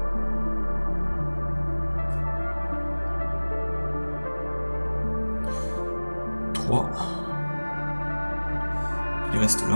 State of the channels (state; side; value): inverted; both; correlation -1.00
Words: 3. Il reste